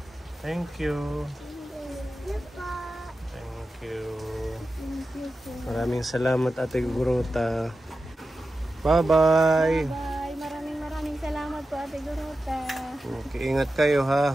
Thank you. Thank you po. Thank you. Thank you po. Maraming salamat Ate Igorota. Bye-bye. Bye. Maraming salamat po, Ate Gorota. Okay, ingat kayo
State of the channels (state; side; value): normal; both; correlation 0.92